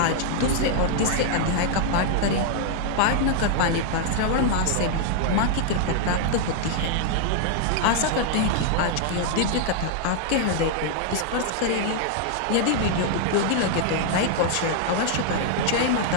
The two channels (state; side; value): different; both; correlation 0.00